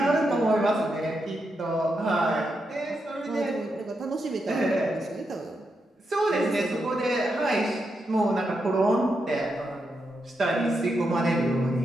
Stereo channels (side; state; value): both; normal; correlation 0.84